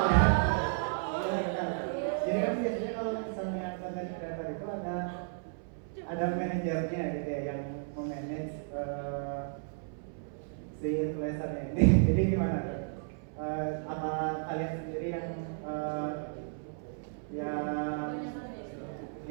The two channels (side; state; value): left; silent; 56 dB below the other